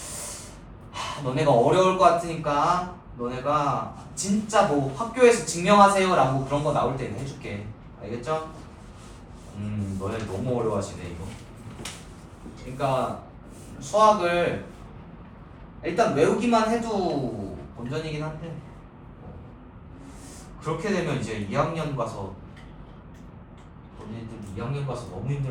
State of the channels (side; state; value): both; identical; correlation 1.00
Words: 너네가 어려울 것 같으니까 너네가 진짜 뭐 학교에서 증명하세요 라고 그런 거 나올 때는 해줄게. 알겠죠? 너네 너무 어려워하시네 이거. 그러니까 수학을 일단 외우기만 해도 본전이긴 한데 그렇게 되면 이제 2학년 가서 너네들 2학년 가서 너무